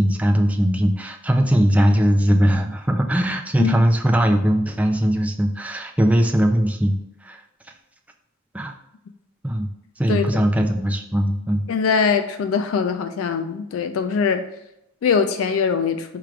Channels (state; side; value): normal; both; correlation 0.74